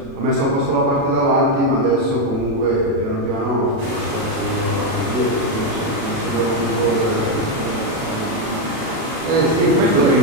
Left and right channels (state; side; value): late; left; 36 ms